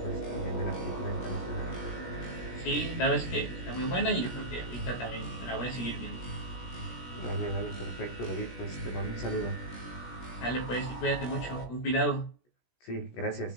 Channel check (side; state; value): right; late; 17 ms